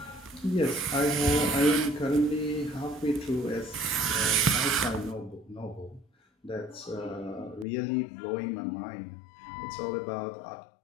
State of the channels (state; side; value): drops out; right; at 7.7 s